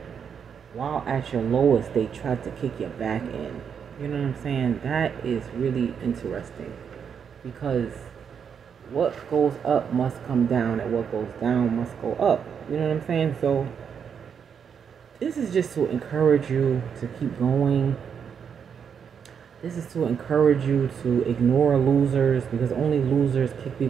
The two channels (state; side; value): quieter; left; 7.2 dB